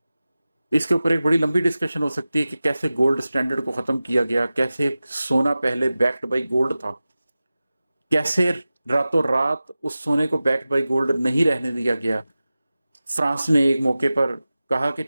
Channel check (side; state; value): both; inverted; correlation -0.96